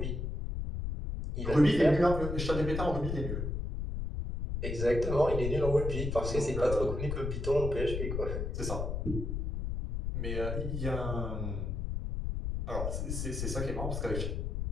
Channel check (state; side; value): noise; left; rumble, 3 dB below the sound